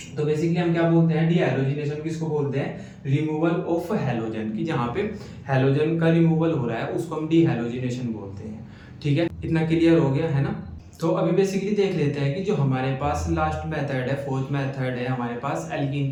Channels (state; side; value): identical; both; correlation 1.00